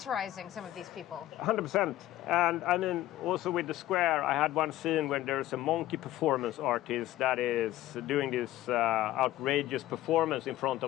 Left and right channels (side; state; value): right; quieter; 14.8 dB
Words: some of these people? 100%. And I mean, also with the Square, I had one scene where there's a monkey performance artist that is doing this outrageous performance in front